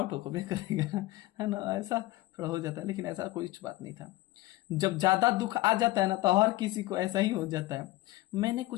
हो भी करेगा, है ना, ऐसा थोड़ा हो जाता है, लेकिन ऐसा कोई बात नहीं था। जब ज्यादा दुख आ जाता है ना, तो हर किसी को ऐसा ही हो जाता है। मैंने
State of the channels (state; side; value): quieter; right; 18.3 dB